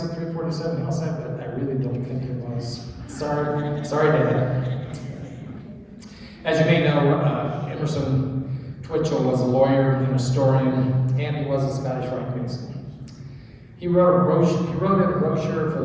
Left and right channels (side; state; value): both; identical; correlation 1.00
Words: at 347 Hillside, but I really don't think it was. Sorry, Dad. As you may know, Emerson Twitchell was a lawyer and historian, and he was a Scottish Rite Mason. He wrote a brochure for